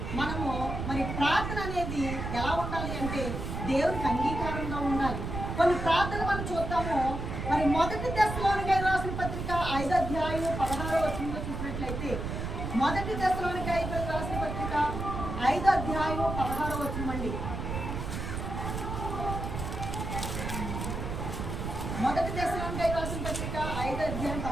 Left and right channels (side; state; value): right; noise; rumble, 4 dB below the sound